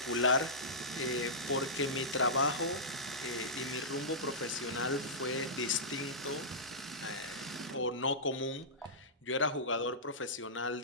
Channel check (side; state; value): both; normal; correlation -0.16